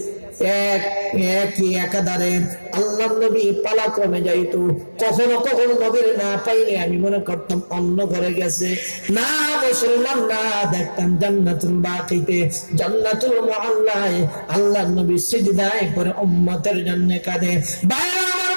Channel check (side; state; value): both; inverted; correlation -1.00